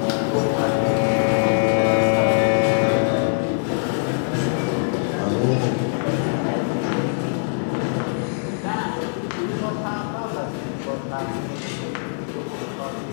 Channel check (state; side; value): silent; right; digital silence